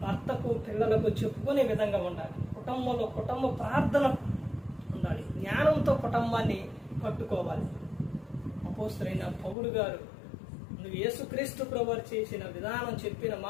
భర్తకు పిల్లలకు చెప్పుకునే విధంగా ఉండాలి. కుటుంబంలో కుటుంబ ప్రార్థన ఉండాలి. జ్ఞానంతో కుటుంబాన్ని కట్టుకోవాలి. అపోస్తలుడైన పౌలు గారు నువ్వు యేసుక్రీస్తు ప్రభువు చేసిన విధానం, చెప్పిన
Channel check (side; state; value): right; drops out; at 9.6 s